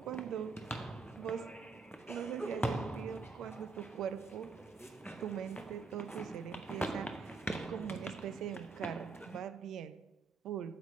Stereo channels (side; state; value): left; quieter; 4.5 dB